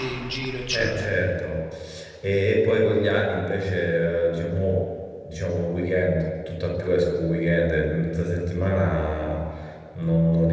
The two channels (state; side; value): identical; both; correlation 1.00